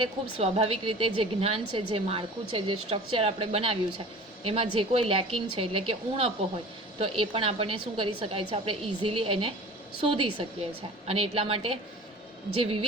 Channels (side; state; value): both; normal; correlation 0.41